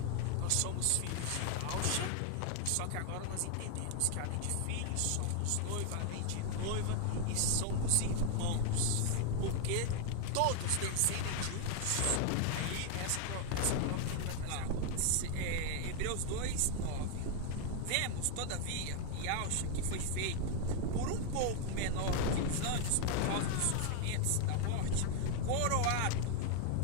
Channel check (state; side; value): different; both; correlation 0.01